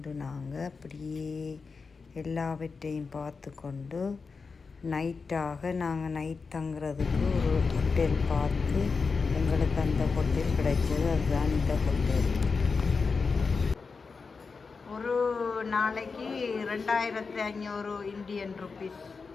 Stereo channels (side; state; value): right; quieter; 4.8 dB